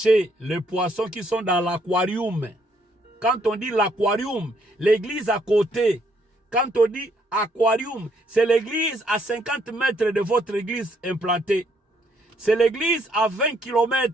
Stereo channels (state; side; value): normal; both; correlation 0.70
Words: les poissons qui sont dans l'aquarium. Quand on dit l'aquarium, l'église à côté. Quand on dit aquarium, c'est l'église à 50 mètres de votre église implantée. C'est l'église à 20